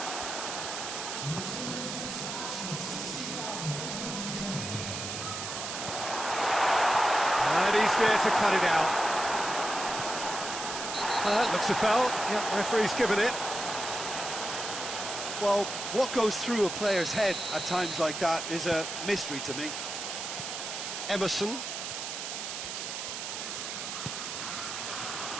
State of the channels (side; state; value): right; noise; hiss, 5 dB below the sound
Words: And he's there to cut it out. That looks a foul. Yep, referee's given it. Well, what goes through a player's head at times like that is a mystery to me. Emerson.